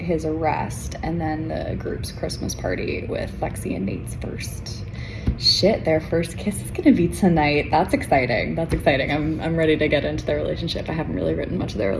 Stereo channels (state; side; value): identical; both; correlation 1.00